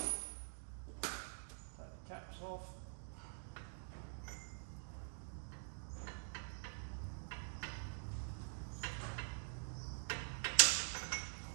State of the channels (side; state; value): left; silent; digital silence